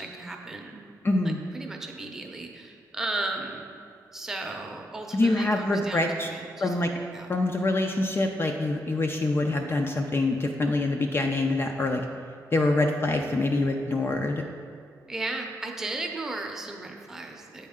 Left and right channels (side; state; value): both; normal; correlation 0.81